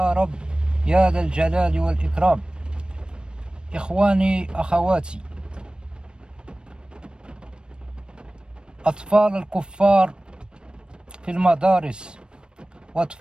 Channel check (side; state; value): left; late; 0.052 ms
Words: رب يا ذا الجلال والإكرام. إخواني أخواتي، أطفال الكفار في المدارس